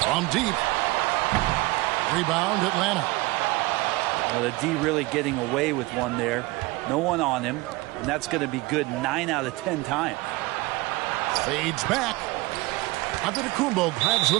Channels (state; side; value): quieter; left; 21.7 dB